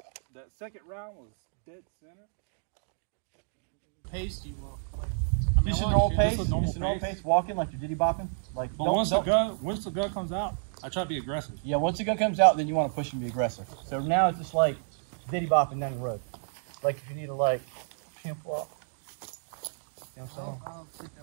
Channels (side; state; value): left; silent; digital silence